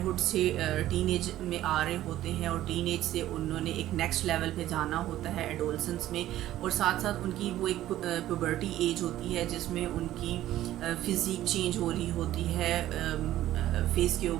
سے ٹین ایج میں آ رہے ہوتے ہیں, اور ٹین ایج سے انہوں نے ایک نیکسٹ لیول پہ جانا ہوتا ہے ایڈولسنس میں, اور ساتھ ساتھ ان کی وہ ایک پیوبرٹی ایج ہوتی ہے جس میں ان کی فزیک چینج ہو رہی ہوتی ہے, فیس کے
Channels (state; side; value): quieter; left; 13.8 dB